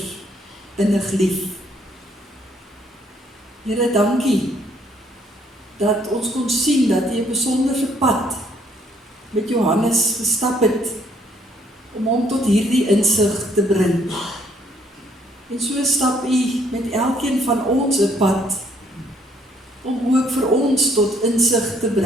innig lief. Here, dankie dat ons kon sien dat U 'n besonderse pad met Johannes gestap het om hom tot hierdie insig te bring. En so stap U met elkeen van ons 'n pad om ook vir ons tot insig te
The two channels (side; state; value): both; normal; correlation 0.66